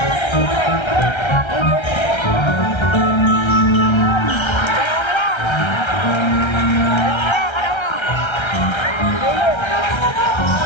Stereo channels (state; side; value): late; right; 1.3 ms